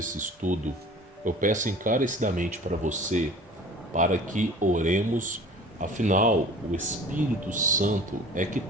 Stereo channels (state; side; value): normal; both; correlation 0.44